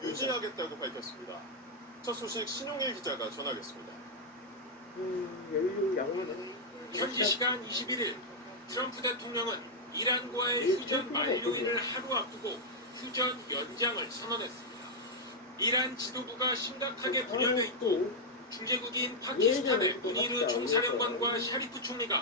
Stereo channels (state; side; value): normal; both; correlation -0.03